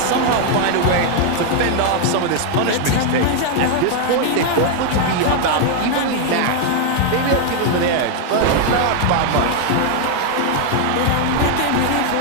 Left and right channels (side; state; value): both; different; correlation 0.00